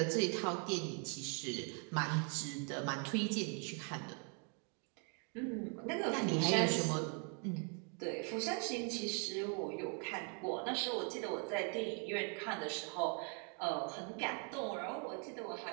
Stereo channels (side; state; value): left; quieter; 38.7 dB